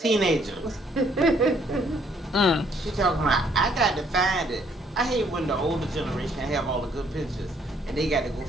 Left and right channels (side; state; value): both; normal; correlation 0.66